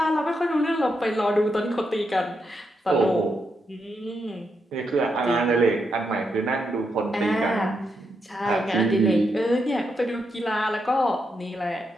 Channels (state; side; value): normal; both; correlation 0.82